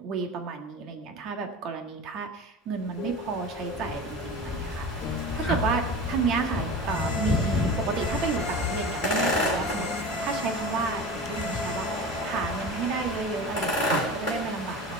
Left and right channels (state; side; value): normal; both; correlation 0.32